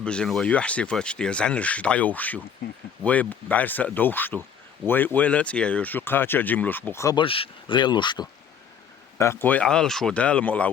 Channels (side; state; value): right; quieter; 7.5 dB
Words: ويحسي فتشتي زنش دعيوشو وي بعرس دوشتو وي لا تيايوشو قاتشا جملوش بو خبرش غيلوشتو أقوي عال شو دال مولع